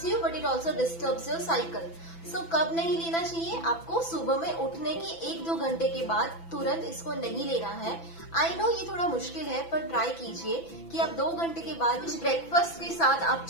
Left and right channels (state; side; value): late; right; 6.0 ms